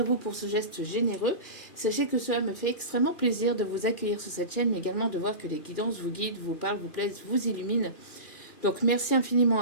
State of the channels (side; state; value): right; late; 2.4 ms